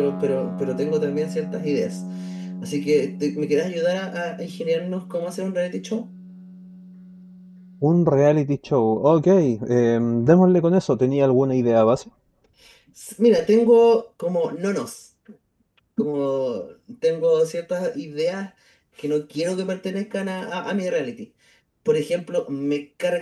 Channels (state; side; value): identical; both; correlation 1.00